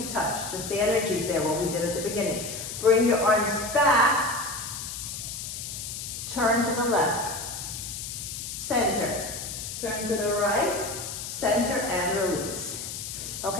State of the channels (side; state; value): left; noise; hiss, 7 dB below the sound